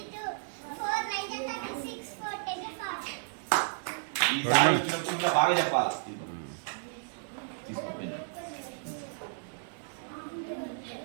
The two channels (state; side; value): silent; left; digital silence